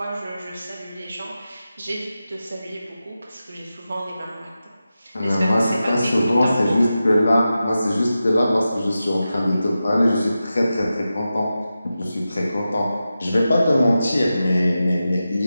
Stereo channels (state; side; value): inverted; both; correlation -0.92